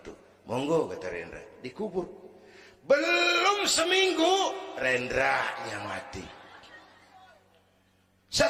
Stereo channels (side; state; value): both; identical; correlation 1.00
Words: Monggo, kata Rendra, dikubur. Belum seminggu Rendranya mati.